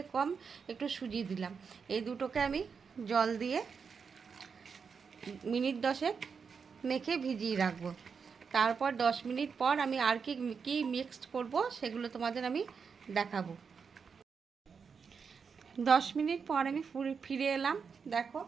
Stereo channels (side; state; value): left; quieter; 5.9 dB